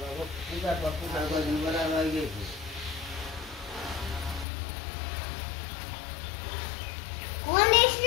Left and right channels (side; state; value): right; drops out; at 4.5 s